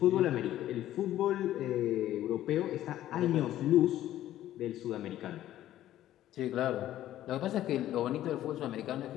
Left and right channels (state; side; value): quieter; right; 13.2 dB